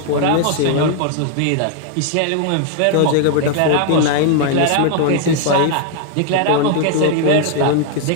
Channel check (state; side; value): different; both; correlation 0.00